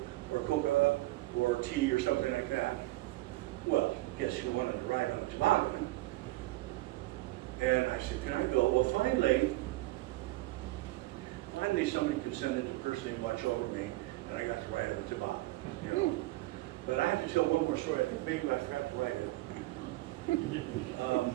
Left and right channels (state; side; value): quieter; left; 19.3 dB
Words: or tea or something like that. Well, guess who wanted to ride on the toboggan? And I said, can I go? Well, finally somebody consented to personally watch over me, and I got to ride on the toboggan. But I have to tell one more story. I think maybe I forgot to write it.